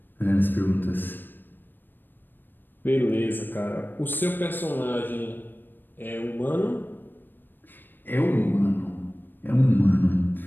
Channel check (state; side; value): late; right; 0.093 ms